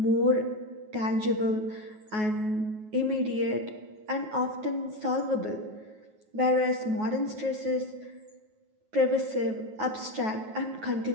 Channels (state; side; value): late; left; 9.4 ms